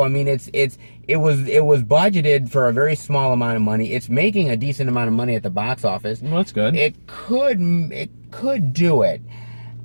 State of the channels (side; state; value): both; inverted; correlation -1.00